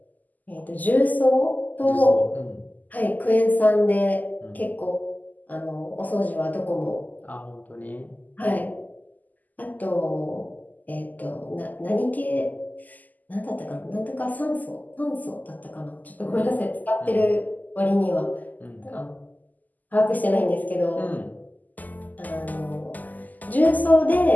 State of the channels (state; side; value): late; right; 0.082 ms